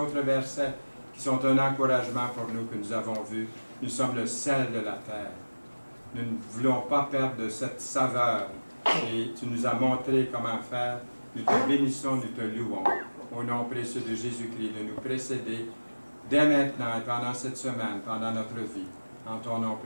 versets qui sont un encouragement pour nous que nous avons vus. Nous sommes le sel de la terre. Nous ne voulons pas perdre de cette saveur et tu nous as montré comment faire. Nous te bénissons, nous te louons. Au nom précieux de Jésus-Christ, de nous précéder dès maintenant et pendant cette semaine, pendant notre vie. En ton nom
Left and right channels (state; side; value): inverted; both; correlation -1.00